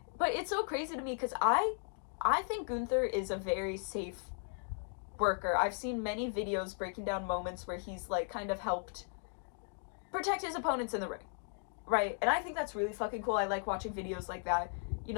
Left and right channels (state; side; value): silent; right; 54 dB below the other